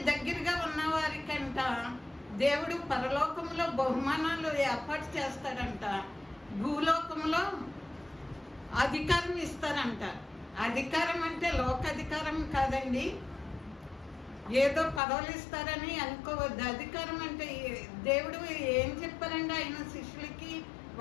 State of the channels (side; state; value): right; drops out; at 15.0 s